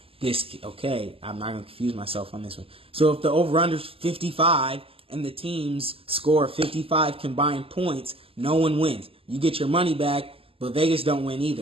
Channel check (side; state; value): left; late; 0.27 ms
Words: okay, I'm not going to confuse myself on this one. So if the over-under is 55 and the teams score 55 combined points, no one wins. You get your money back, but Vegas don't win